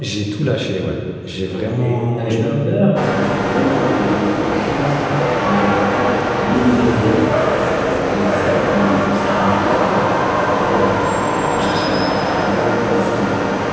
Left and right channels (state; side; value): identical; both; correlation 1.00